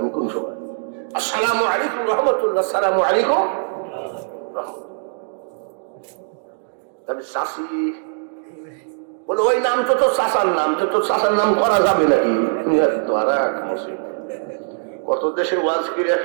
কোন সময়? আসসালামু আলাইকুম রহমতুল্লাহ, আসসালামু আলাইকুম। তবে শাশি বলে, ওই নাম তো তোর শাসার নাম, তো তোর শাসার নাম করা যাবে নাকি? ধরা কত দেশে ওয়াজ করে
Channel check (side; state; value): left; silent; digital silence